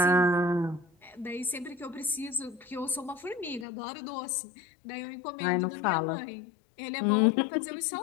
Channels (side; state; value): right; drops out; at 3.7 s